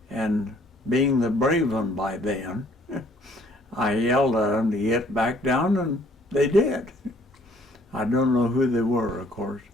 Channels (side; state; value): both; normal; correlation 0.60